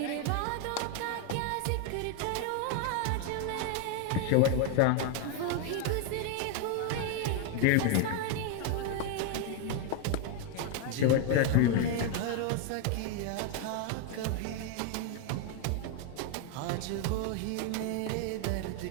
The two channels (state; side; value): different; both; correlation 0.01